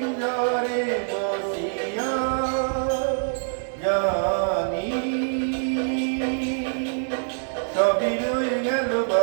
বসিয়া জানি সবই রয়ে গেল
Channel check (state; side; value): silent; left; 62 dB below the other